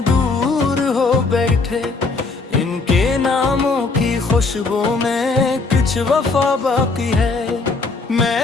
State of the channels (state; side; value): quieter; right; 3.9 dB